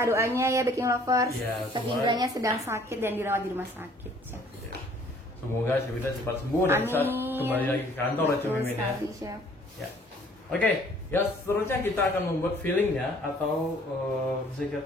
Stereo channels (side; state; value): both; normal; correlation 0.57